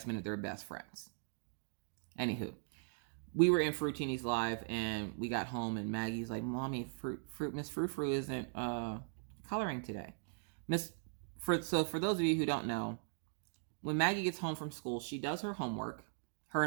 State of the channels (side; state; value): left; silent; digital silence